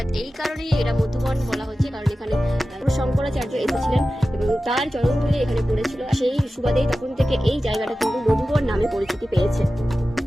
এই কারণেই এটা মধুবন বলা হচ্ছে, কারণ এখানে শঙ্করাচার্য এসেছিলেন এবং তার চরণধুলি এখানে পড়েছিল। সেই সুবাদেই তখন থেকে এই জায়গাটা কিন্তু মধুবন নামে পরিচিতি পেয়েছে।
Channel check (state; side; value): normal; both; correlation 0.94